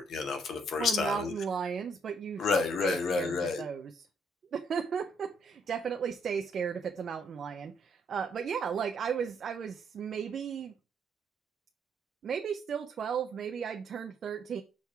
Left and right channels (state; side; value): normal; both; correlation 0.70